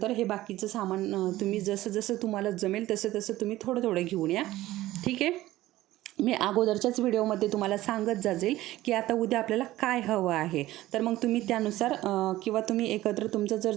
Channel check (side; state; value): left; quieter; 16.1 dB